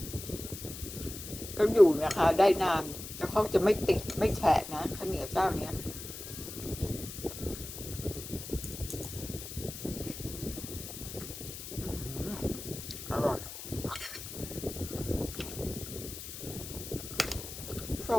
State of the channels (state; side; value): noise; left; hiss, 10 dB below the sound